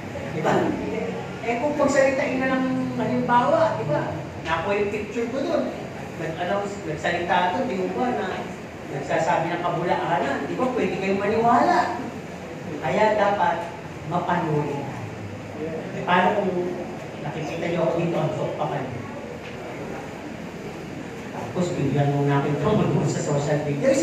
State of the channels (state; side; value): identical; both; correlation 1.00